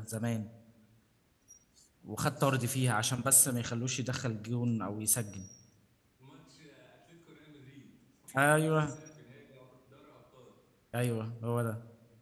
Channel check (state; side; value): identical; both; correlation 1.00